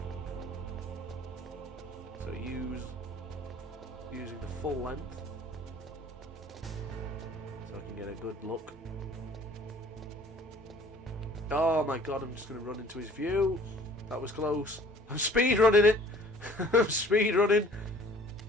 So using the full length, so I can get a good look. Oh my god, I'm just going to run into his view. That was close. I'm speed running it. I'm speed running.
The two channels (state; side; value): normal; both; correlation 0.52